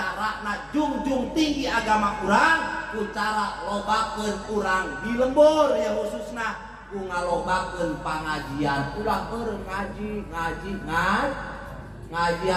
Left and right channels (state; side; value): identical; both; correlation 1.00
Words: jungjung tinggi agama urang ku cara lobakeun urang di lembur ya khususna ku ngalobakeun pangajian. Ulah eureun ngaji